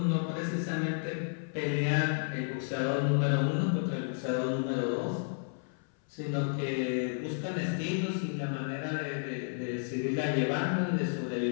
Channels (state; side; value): silent; right; 56 dB below the other